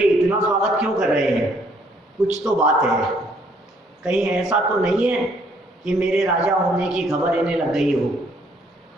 इतना स्वागत क्यों कर रहे हैं, कुछ तो बात है, कहीं ऐसा तो नहीं है कि मेरे राजा होने की खबर इन्हें लग गई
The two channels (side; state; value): both; normal; correlation 0.65